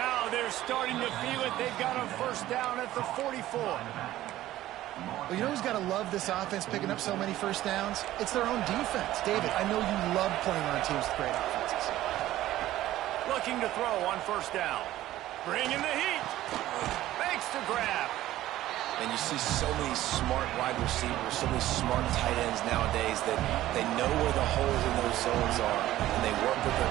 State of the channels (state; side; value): quieter; left; 14.7 dB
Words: they're starting to feel it. They've got a 1st down at the 44. Well, you know who's got to love this offense picking up so many 1st downs? It's their own defense. David, I know you love playing on teams with great offenses. Looking to throw on 1st down. Bringing the heat. Makes the grab. And you see so many smart wide receivers, so many smart tight ends nowadays that they know where the holes in those zones are, and they work with their